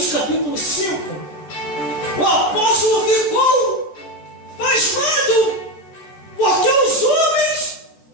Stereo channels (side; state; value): right; late; 14 ms